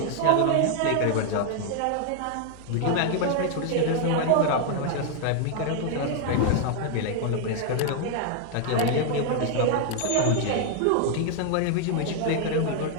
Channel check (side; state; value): both; different; correlation 0.00